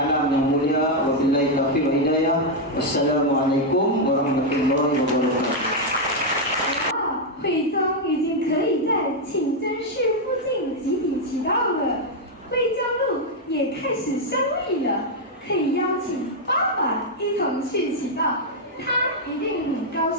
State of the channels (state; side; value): normal; both; correlation 0.00